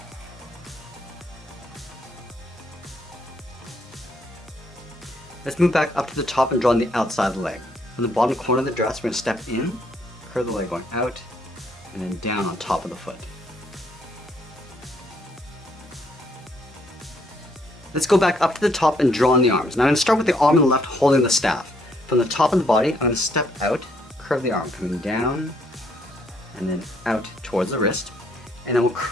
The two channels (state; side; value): normal; both; correlation 0.70